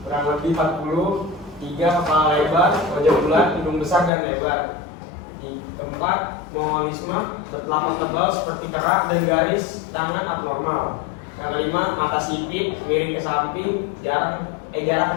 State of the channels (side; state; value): right; drops out; at 4.1 s